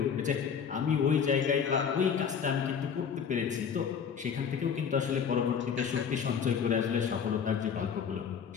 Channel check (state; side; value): quieter; right; 7.1 dB